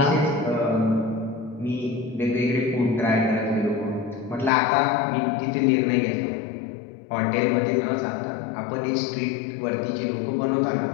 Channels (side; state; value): right; drops out; at 4.5 s